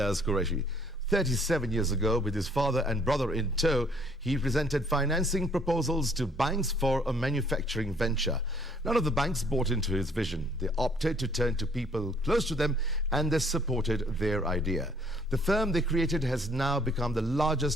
Qureshi. 37 years ago, with his father and brother in tow, he presented financing proposals to banks for a manufacturing venture. None of the banks bought into his vision. They opted to turn to people close to them, and they supported their idea. The firm they created has now become the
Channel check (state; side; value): normal; both; correlation 0.61